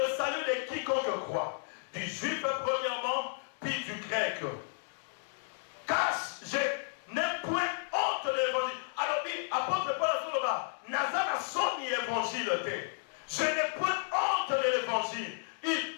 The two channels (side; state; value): right; silent; digital silence